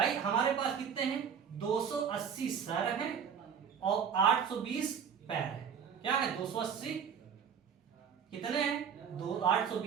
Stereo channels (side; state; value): left; quieter; 7.4 dB